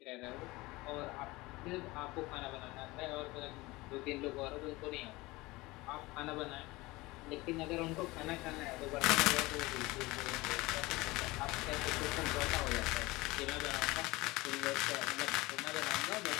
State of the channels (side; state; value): right; quieter; 21.3 dB